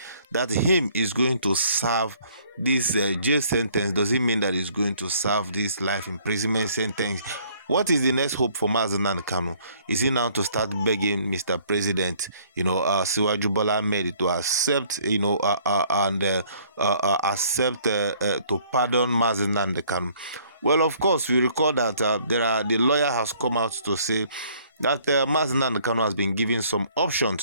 that him is going to serve this jail sentence? Does it mean that he's going to serve this life imprisonment sentence? What is the next hope for Mazi Nnamdi Kanu? Is he now to start begging Mr. President, Siwaju Bola Ahmed to accept, accept to pardon Mazi Nnamdi Kanu? Well, of course, we recall that the lawyer has come out to say that Mazi Nnamdi Kanu has been given some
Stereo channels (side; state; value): both; inverted; correlation -0.60